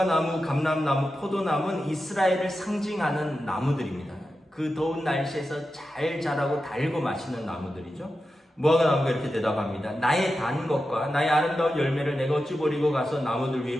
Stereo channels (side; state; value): both; normal; correlation 0.91